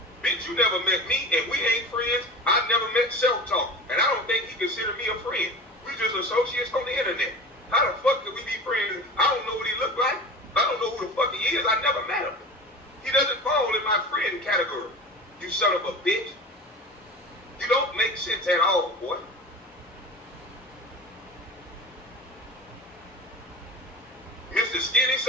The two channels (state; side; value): normal; both; correlation 0.34